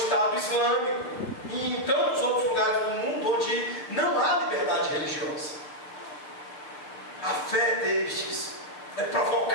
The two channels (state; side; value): late; right; 6.6 ms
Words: Islâmico e em tantos outros lugares do mundo onde não há liberdade religiosa. A fé destes é